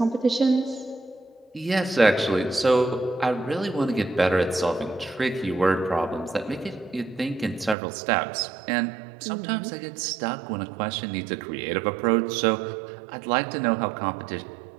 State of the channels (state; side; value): drops out; left; at 7.8 s